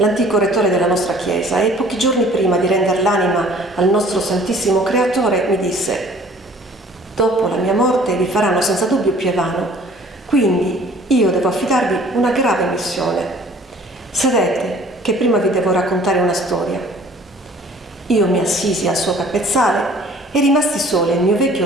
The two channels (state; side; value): normal; both; correlation 0.52